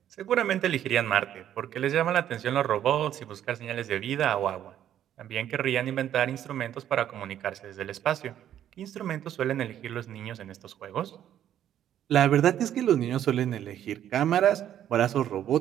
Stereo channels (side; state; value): left; quieter; 10.8 dB